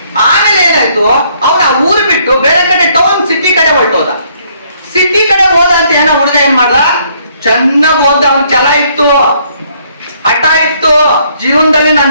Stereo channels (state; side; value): inverted; both; correlation -0.67